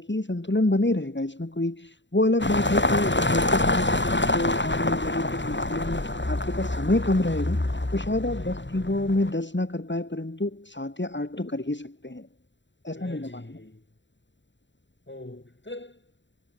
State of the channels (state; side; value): late; right; 0.53 ms